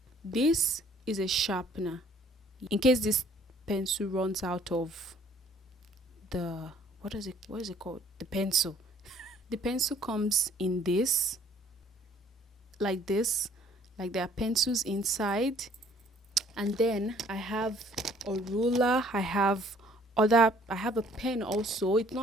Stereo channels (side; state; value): both; normal; correlation 0.58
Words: this is a sharpener in case this pencil runs out of the what is it called, the pencil. The pencil comes in this, like this, like there are pencils inside. And then I have a ruler, I have a pen also. It's